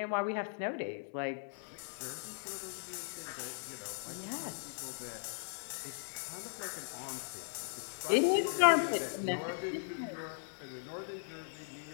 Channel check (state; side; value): silent; right; 52 dB below the other